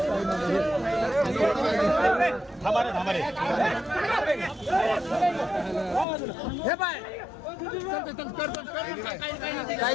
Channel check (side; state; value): right; drops out; at 6.1 s